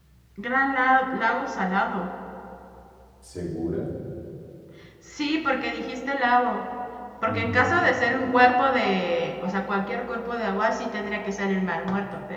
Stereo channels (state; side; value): identical; both; correlation 1.00